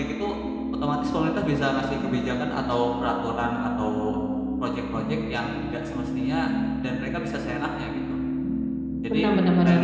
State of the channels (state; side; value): identical; both; correlation 1.00